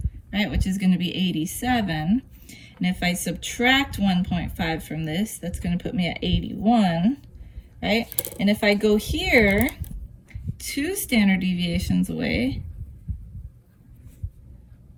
right, which is going to be 87. And if I subtract 1.5 from this, that's going to put me at 81, right? And if I go here, 2 standard deviations away,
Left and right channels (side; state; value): both; identical; correlation 1.00